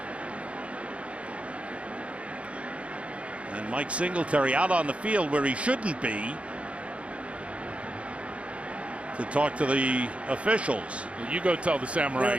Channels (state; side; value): late; left; 0.062 ms